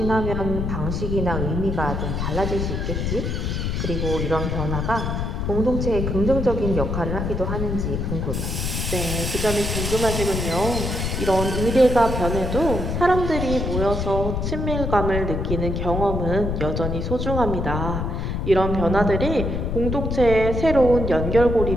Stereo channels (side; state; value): left; noise; rumble, 2 dB below the sound